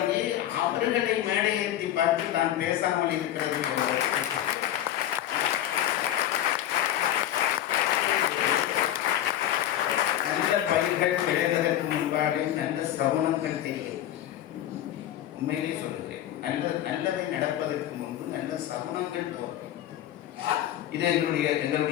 அவர்களை மேடையேற்றி பார்த்து தான் பேசாமல் இருக்கிறது. நல்ல பயிர்கள் விளைவதற்கு முன்பாக நல்ல சகுனங்கள் தெரியும். உண்மையிலே சொல்லுகிறேன், நல்லதை நடப்பதற்கு முன்பு நல்ல சகுனங்கள் தோன்றும். இது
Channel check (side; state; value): right; quieter; 12.2 dB